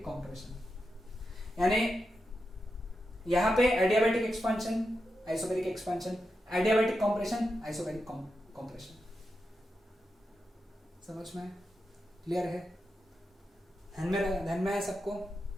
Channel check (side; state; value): both; normal; correlation 0.88